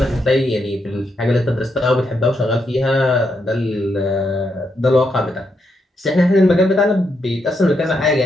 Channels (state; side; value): normal; both; correlation 0.80